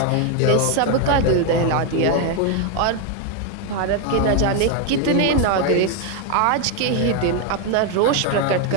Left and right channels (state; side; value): different; both; correlation 0.01